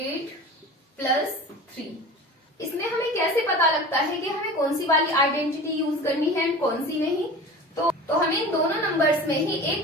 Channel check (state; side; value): normal; both; correlation 0.36